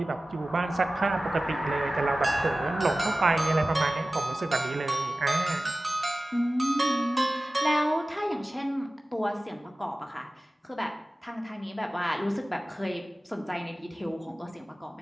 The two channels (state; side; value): normal; both; correlation 0.97